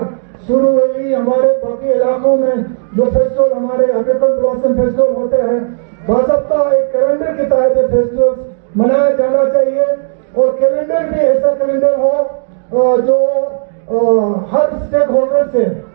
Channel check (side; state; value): left; silent; digital silence